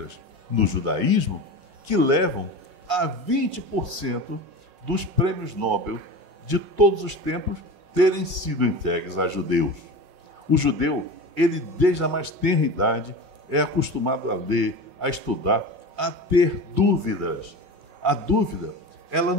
no judaísmo, que levam a 20% dos prêmios Nobel de todos os tempos terem sido entregues a judeus. O judeu, ele desde a mais tenra idade, é acostumado a ler, a estudar, a ter dúvidas. A dúvida, ela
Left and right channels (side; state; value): left; late; 5.5 ms